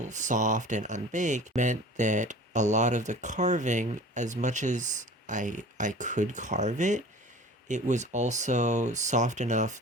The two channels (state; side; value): normal; both; correlation 0.42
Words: soft and unbaked meant that a lot of the carving, as much as I could carve it, it was also soft enough